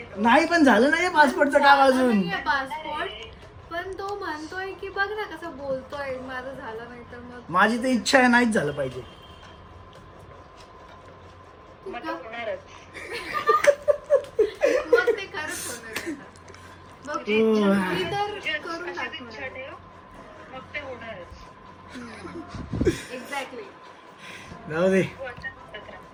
आहे. नाही पण झालं नाही पासपोर्टचं काम अजून. पासपोर्ट पण तो म्हणतोय की बघ ना कसं बोलतोय, माझं झालं नाही तर मग माझी तर इच्छा आहे नाहीच झालं पाहिजे. मग तो होणारच. मग ते खरंच होणार आहे. मग हो. मी तर करून अशीच इच्छा टाकणार. ठेव. मग ते होणारच. एक्झॅक्टली. जाऊ दे. तू आता म्हणत राहा.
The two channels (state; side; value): identical; both; correlation 1.00